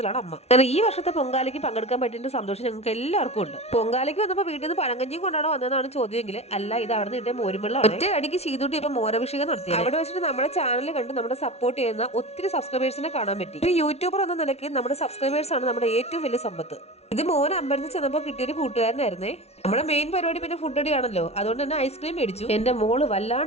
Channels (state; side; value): late; right; 0.31 ms